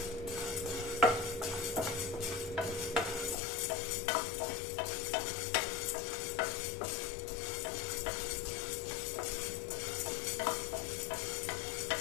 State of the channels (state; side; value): drops out; right; at 3.4 s